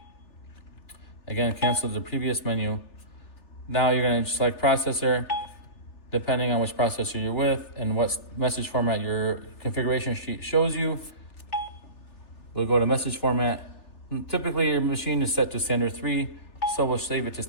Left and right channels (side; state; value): right; late; 3.4 ms